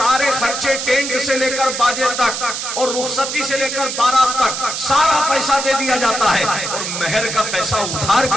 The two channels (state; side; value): noise; right; hiss, 4 dB below the sound